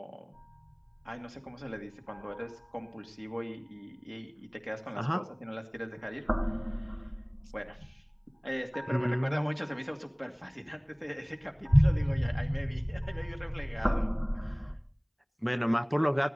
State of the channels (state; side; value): identical; both; correlation 1.00